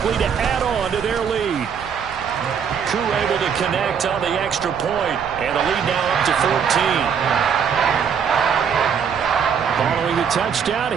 to add on to their lead. Koo able to connect on the extra point, and the lead now up to 14. Following the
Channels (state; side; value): quieter; left; 7.2 dB